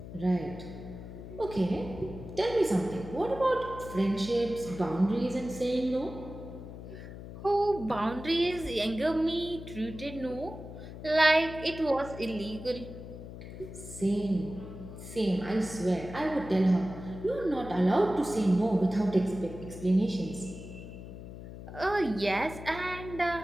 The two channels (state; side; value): noise; left; hum, 12 dB below the sound